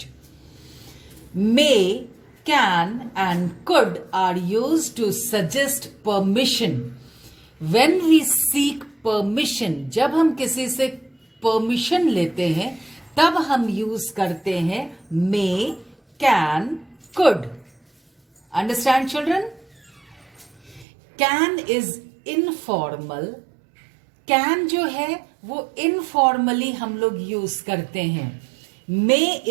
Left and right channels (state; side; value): drops out; left; at 20.9 s